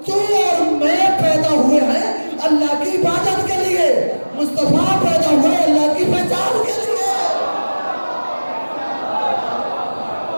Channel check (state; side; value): inverted; both; correlation -1.00